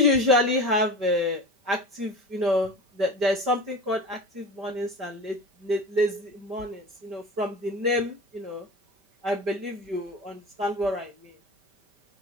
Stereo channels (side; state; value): left; late; 5.1 ms